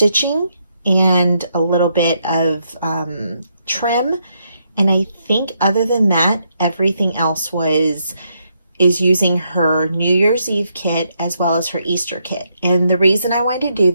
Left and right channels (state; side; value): inverted; both; correlation -0.78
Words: and a little bit of trim, and I think other than that everything else is using her New Year's Eve kit as well as her Easter kit. And the reason I wanted to do